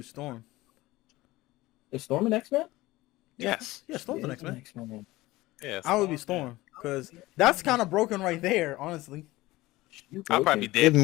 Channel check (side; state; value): right; quieter; 18.8 dB